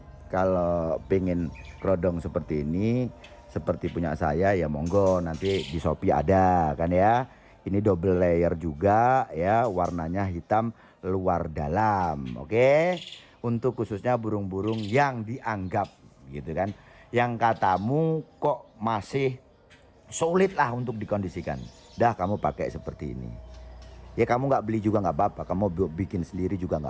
kalau pengen kerodong seperti ini, seperti punya saya ya monggo, nanti di Shopee ada kan ya. Ini double layer juga ya, warnanya hitam luar dalam. Oke, untuk khususnya burung-burung yang dianggap gitu kan, yang katamu kok masih sulit lah untuk dikondisikan, dah kamu pakai seperti ini ya. Kamu nggak beli juga nggak apa-apa, kamu bikin sendiri juga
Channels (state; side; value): identical; both; correlation 1.00